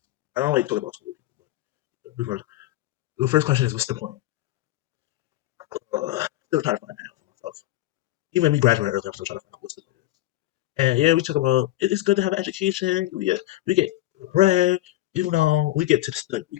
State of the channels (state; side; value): quieter; right; 15.7 dB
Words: I don't like talking about school. Before, the first question is, what's the point? Still trying to find that out for myself. Even when we graduate early, I'm still trying to find out what's the point. And yeah, we talk about it's good to have an education. We get bread, you know, we get to the